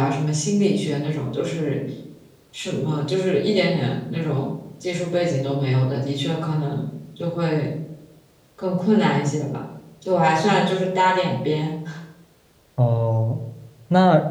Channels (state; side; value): identical; both; correlation 1.00